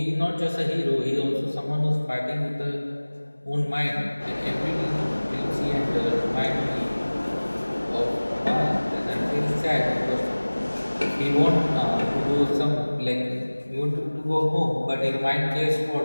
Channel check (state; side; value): inverted; both; correlation -1.00